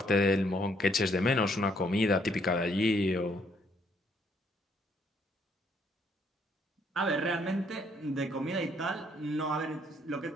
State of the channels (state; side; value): normal; both; correlation 0.69